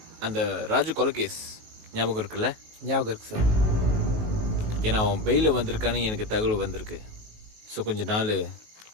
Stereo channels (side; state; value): left; late; 19 ms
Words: அந்த ராஜு கொலை கேஸ் ஞாபகம் இருக்குல்ல? ஞாபகம் இருக்கு சார். ஏன்னா அவன் பெயிலில் வந்திருக்கான்னு எனக்கு தகவல் வந்திருக்கு. ஸோ கொஞ்ச நாள்